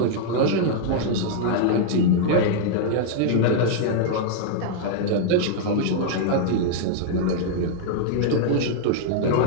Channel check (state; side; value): different; both; correlation -0.01